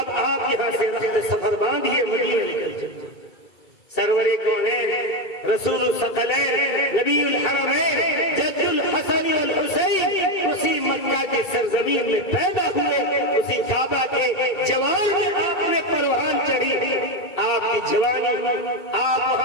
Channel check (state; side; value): late; right; 2.3 ms